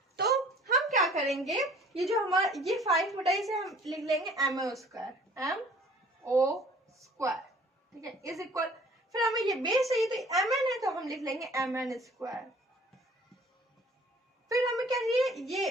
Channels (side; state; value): both; normal; correlation 0.52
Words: हम क्या करेंगे, ये जो हमारा ये 5 मीटर से हम लिख लेंगे MO स्क्वायर, ठीक है, इज इक्वल, फिर हमें ये बेस चाहिए तो MN है, तो हम लिख लेंगे MN स्क्वायर। फिर हमें क्या चाहिए, ये